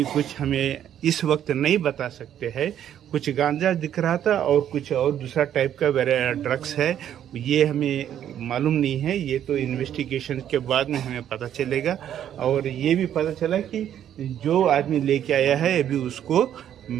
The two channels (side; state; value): left; quieter; 10.3 dB